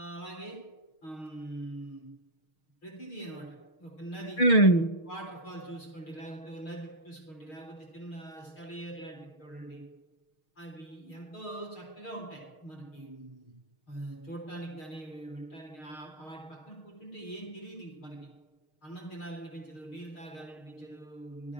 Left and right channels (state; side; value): late; right; 6.4 ms